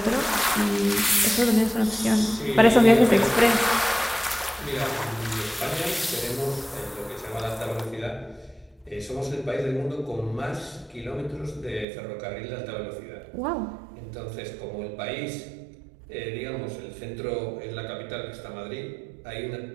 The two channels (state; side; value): drops out; left; at 11.9 s